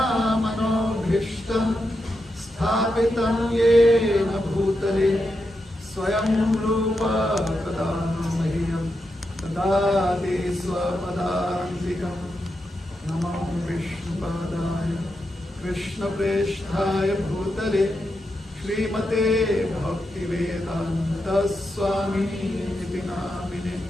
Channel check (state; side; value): normal; both; correlation 0.86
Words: मनोभीष्टं स्थापितं येन भूतले स्वयं रूप कदा मह्यं ददाति स्वपदान्तिकं नमो विष्णुपादाय कृष्णप्रेष्ठाय भूतले श्रीमते भक्तिवेदान्त स्वामिनिति नामिने